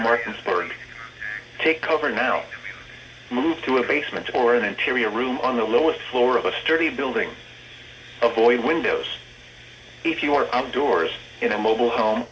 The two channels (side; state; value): both; identical; correlation 1.00